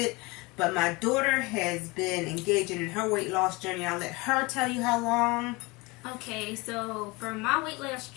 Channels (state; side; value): quieter; right; 24.8 dB